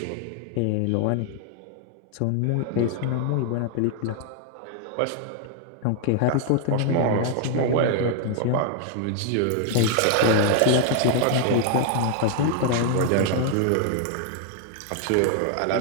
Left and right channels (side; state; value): both; different; correlation 0.00